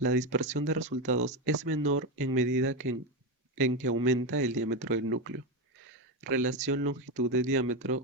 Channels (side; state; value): both; normal; correlation 0.12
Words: dispersión de resultados es menor en medida en que aumenta el diámetro del núcleo. Relación longitud de